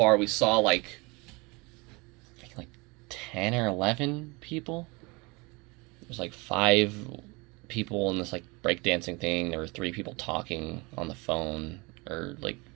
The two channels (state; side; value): quieter; left; 26.5 dB